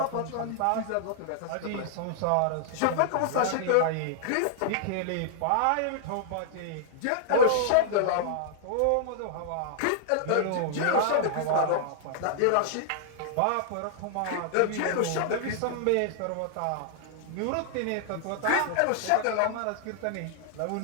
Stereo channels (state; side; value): different; both; correlation -0.01